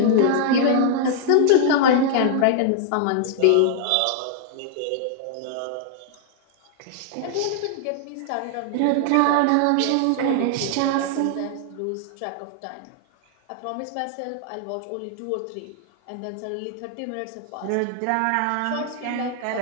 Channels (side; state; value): both; different; correlation -0.01